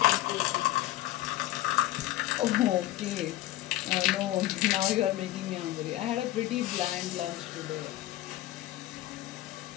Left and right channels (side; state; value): right; quieter; 15.6 dB